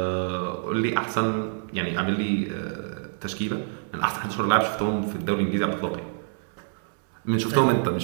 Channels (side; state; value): left; silent; digital silence